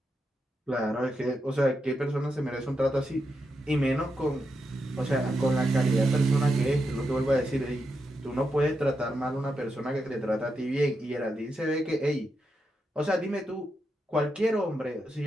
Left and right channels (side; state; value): both; normal; correlation 0.85